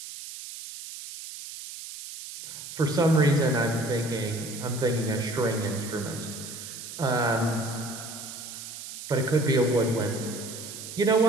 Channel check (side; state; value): right; noise; hiss, 11 dB below the sound